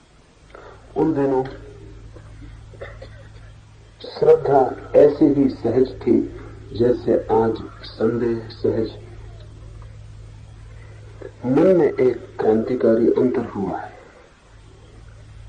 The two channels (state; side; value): identical; both; correlation 1.00